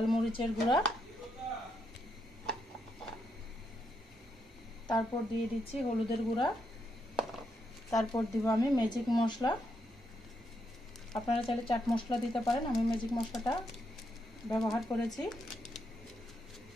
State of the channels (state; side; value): normal; both; correlation 0.80